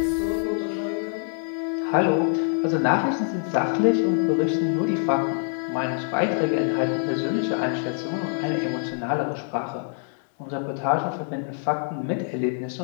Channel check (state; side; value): silent; right; 62 dB below the other